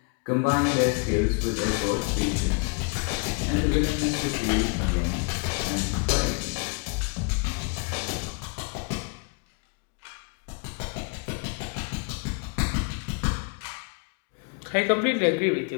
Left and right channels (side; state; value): right; quieter; 34.8 dB